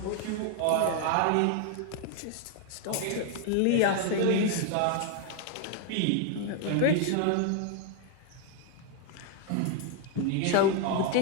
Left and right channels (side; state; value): both; different; correlation 0.00